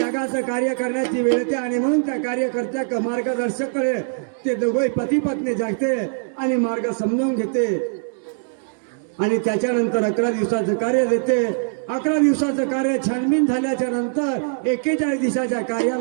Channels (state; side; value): silent; left; digital silence